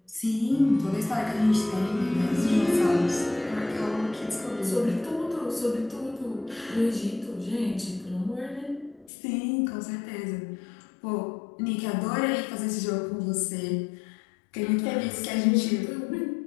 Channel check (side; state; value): right; drops out; at 9.1 s